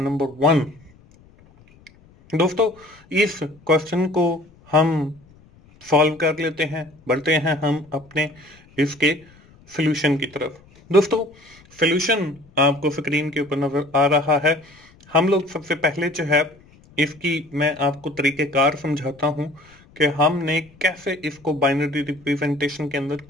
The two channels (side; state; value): left; noise; rumble, 27 dB below the sound